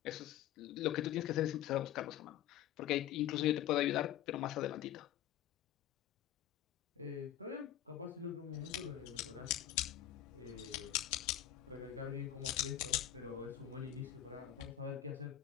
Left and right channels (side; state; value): right; quieter; 12.1 dB